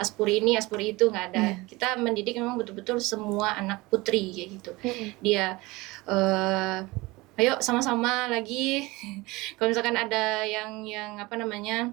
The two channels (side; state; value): left; quieter; 22.1 dB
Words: ini, Aspuri itu, nggak ada. Kita mendidik memang betul-betul semua anak putri kayak gitu. Dia ayo sama-sama lagi kalau misalkan ada yang apa